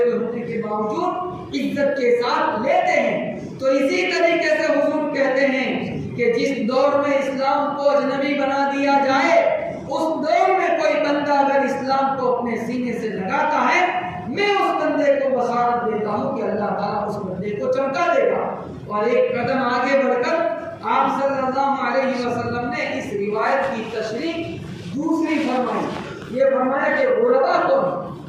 ہونے کے باوجود عزت کے ساتھ لیتے ہیں۔ تو اسی طریقے سے حضور کہتے ہیں کہ جس دور میں اسلام کو اجنبی بنا دیا جائے، اس دور میں کوئی بندہ اگر اسلام کو اپنے سینے سے لگاتا ہے، میں اس بندے کو بشارت دیتا ہوں کہ اللہ تعالیٰ اس بندے کو چمکا دے گا۔ اور ایک قدم آگے بڑھ کر آپ صلی اللہ علیہ وسلم نے اس روایت یہ فرمایا کہ غربا کون،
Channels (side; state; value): both; identical; correlation 1.00